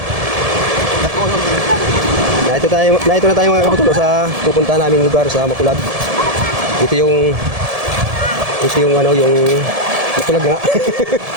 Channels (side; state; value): left; late; 1.7 ms